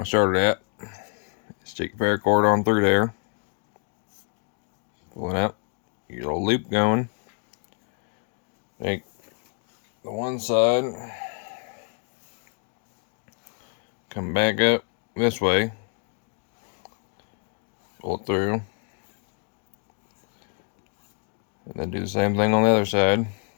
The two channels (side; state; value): right; quieter; 38.8 dB